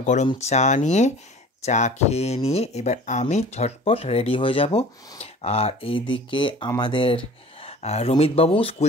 গরম চা নিয়ে। চা খেয়ে নিয়ে এবার আমি ঝটপট রেডি হয়ে যাব। আর এইদিকে আমাদের রমিতবাবু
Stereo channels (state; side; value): normal; both; correlation 0.44